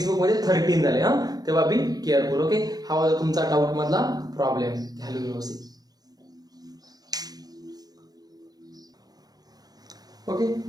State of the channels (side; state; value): left; late; 0.19 ms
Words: बुक मध्ये 13 झाले हा तेव्हा बी केअरफुल ओके हा होता तुमचा डाऊट मधला प्रॉब्लेम घ्यालो व्यवस्थित ओके